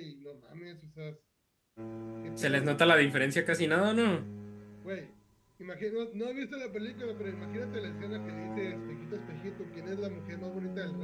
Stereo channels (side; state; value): both; identical; correlation 1.00